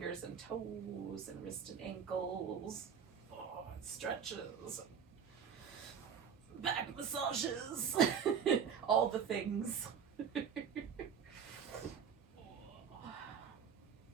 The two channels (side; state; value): left; quieter; 7.2 dB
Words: and toes and wrists and ankles, stretches, back massages, all the things.